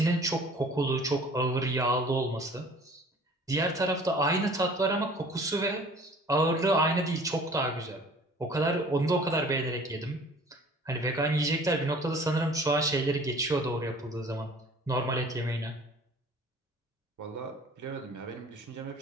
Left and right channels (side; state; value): both; normal; correlation 0.49